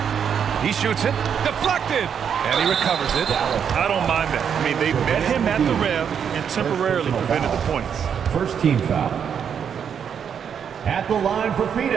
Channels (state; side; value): quieter; left; 7.7 dB